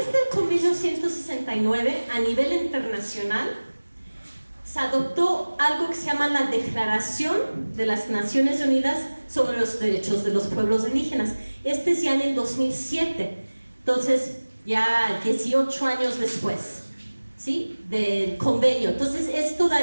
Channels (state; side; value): inverted; both; correlation -1.00